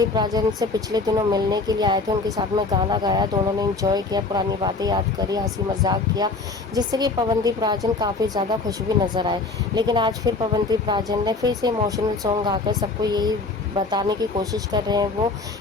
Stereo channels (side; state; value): right; quieter; 3.8 dB